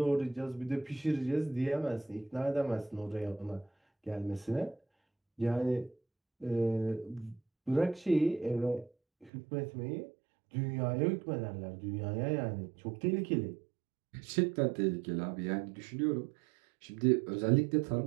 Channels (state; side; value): drops out; left; at 9.3 s